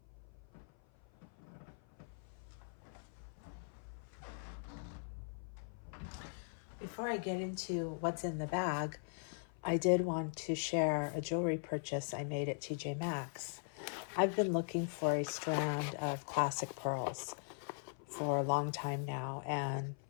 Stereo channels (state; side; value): silent; right; 51 dB below the other